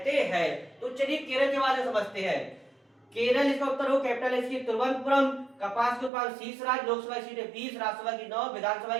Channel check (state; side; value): drops out; left; at 6.1 s